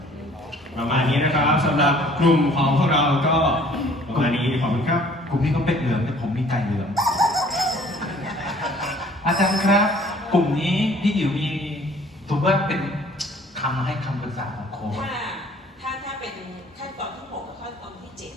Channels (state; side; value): normal; both; correlation 0.55